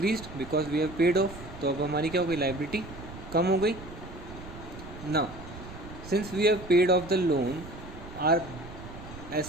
because we have paid off. तो अब हमारी क्या हो गई? Liability कम हो गई. Now since we have paid off the loan, our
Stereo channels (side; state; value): right; noise; rumble, 14 dB below the sound